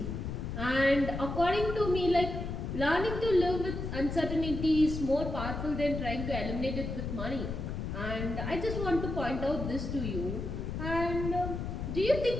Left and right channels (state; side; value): noise; left; rumble, 4 dB below the sound